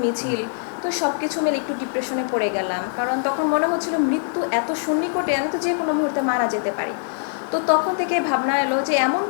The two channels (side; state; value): right; silent; digital silence